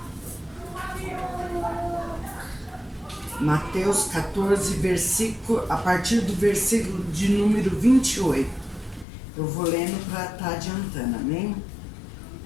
Mateus 14, versículo, a partir do versículo de número 28. Eu vou lendo para estar adiantando, amém?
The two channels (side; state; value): right; drops out; at 9.1 s